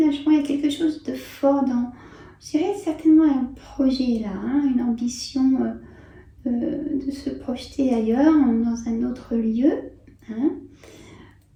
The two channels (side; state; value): both; identical; correlation 1.00